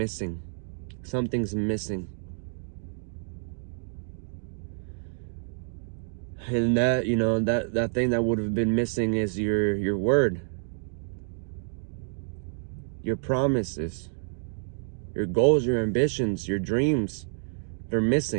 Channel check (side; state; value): left; silent; digital silence